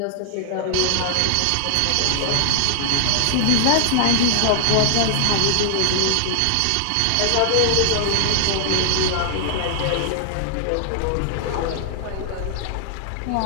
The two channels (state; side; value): different; both; correlation 0.00